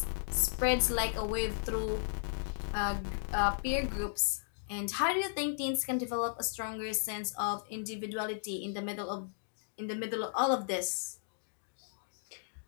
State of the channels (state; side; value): silent; right; digital silence